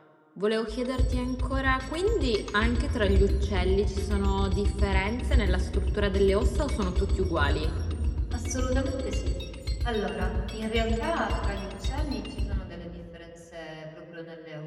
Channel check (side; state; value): both; identical; correlation 1.00